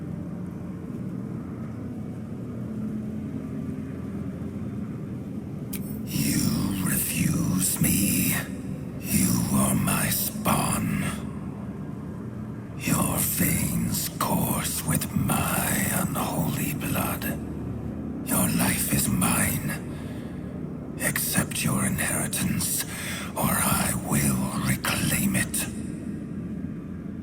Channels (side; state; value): both; identical; correlation 1.00